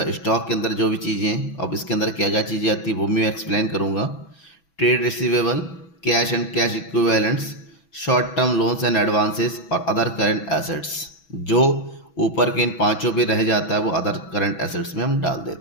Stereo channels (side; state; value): right; late; 6.1 ms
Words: स्टॉक के अंदर जो भी चीज़ें हैं, अब इसके अंदर क्या क्या चीज़ें आती है वो मैं एक्सप्लेन करूँगा। Trade receivable, cash and cash equivalents, short term loans and advances और अदर करंट एसेट्स, जो ऊपर के इन पांचों पे रह जाता है वो अदर करंट एसेट्स में हम डाल